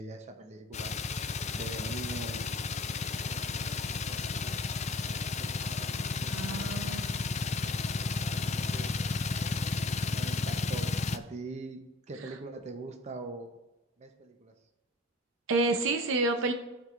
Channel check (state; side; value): normal; both; correlation 0.47